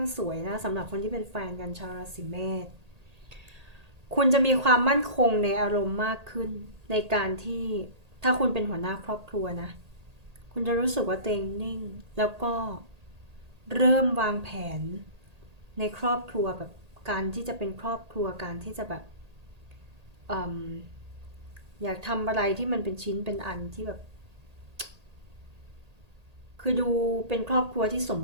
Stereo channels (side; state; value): left; late; 1.8 ms